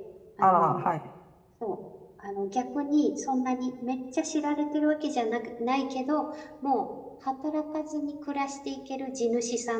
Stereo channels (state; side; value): identical; both; correlation 1.00